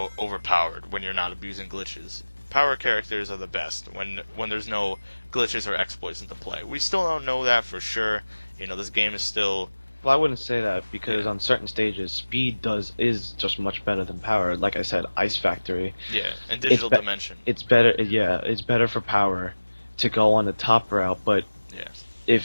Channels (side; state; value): both; inverted; correlation -1.00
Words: overpowered when you're not abusing glitches. Power characters are the best when there's no glitches or exploits into play. We still don't know that for sure. This game is still Well, I wouldn't say that because yeah, on certain stages, speed is just much better than power. Like I said, Ice Factory, yeah, and it's Digital be- Dimension. it's better. Yeah, it's better for power to go on the top route. But Yeah,